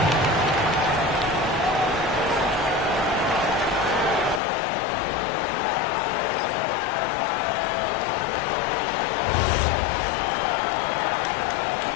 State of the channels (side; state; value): right; drops out; at 4.4 s